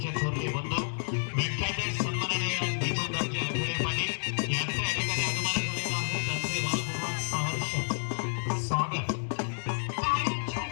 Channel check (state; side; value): silent; right; digital silence